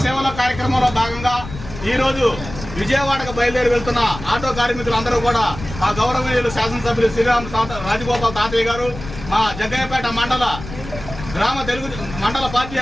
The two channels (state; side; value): noise; left; rumble, 12 dB below the sound